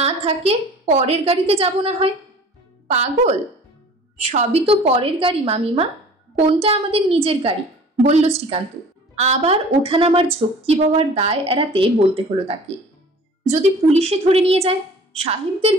থাকে পরের গাড়িতে যাব না হয়। পাগল, সবই তো পরের গাড়ি মামিমা, কোনটা আমাদের নিজের গাড়ি? বলল শ্রীকান্ত। আবার ওঠানামার ঝক্কি বাবার দায় এড়াতে বলতে হলো তাকে, যদি পুলিশে ধরে নিয়ে যায়? সাহেবদের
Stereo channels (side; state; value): both; normal; correlation 0.46